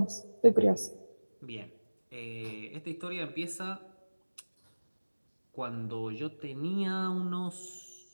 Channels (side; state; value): both; inverted; correlation -1.00